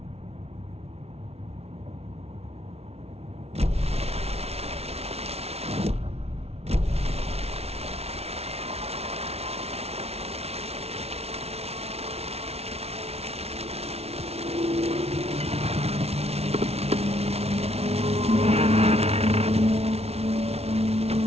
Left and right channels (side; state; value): left; late; 0.30 ms